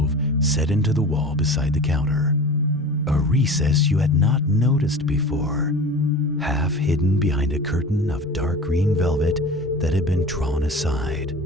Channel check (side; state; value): both; normal; correlation 0.36